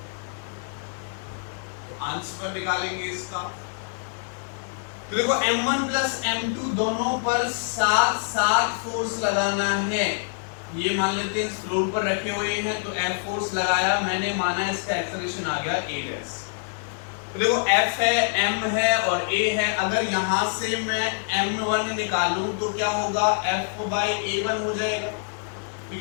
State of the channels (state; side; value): silent; right; 55 dB below the other